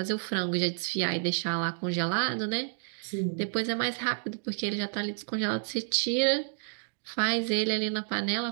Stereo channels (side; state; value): left; silent; digital silence